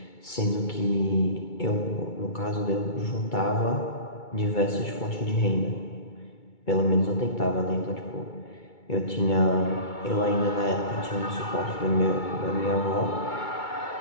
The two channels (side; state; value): right; late; 2.2 ms